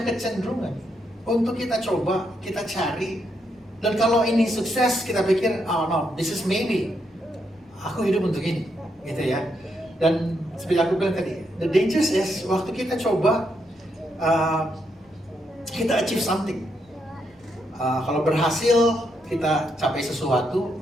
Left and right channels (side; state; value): both; normal; correlation 0.79